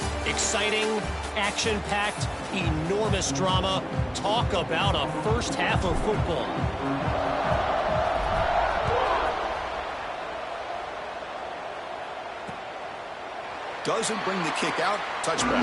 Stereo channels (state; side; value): identical; both; correlation 1.00